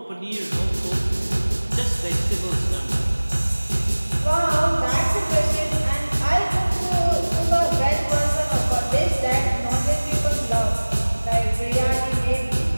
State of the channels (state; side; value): inverted; both; correlation -1.00